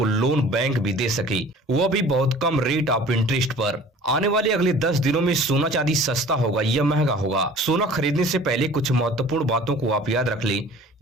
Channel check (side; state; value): both; normal; correlation 0.47